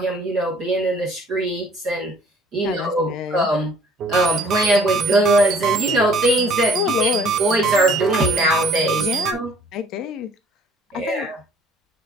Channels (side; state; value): both; normal; correlation 0.56